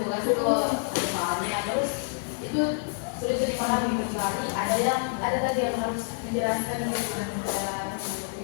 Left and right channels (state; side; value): silent; right; 60 dB below the other